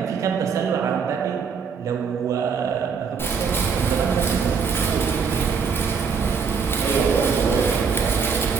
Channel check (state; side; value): quieter; left; 6.0 dB